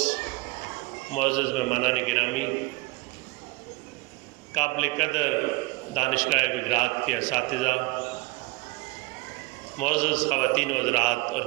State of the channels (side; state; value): left; quieter; 23.3 dB